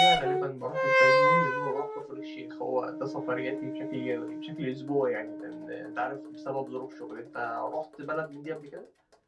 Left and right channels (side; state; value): both; identical; correlation 1.00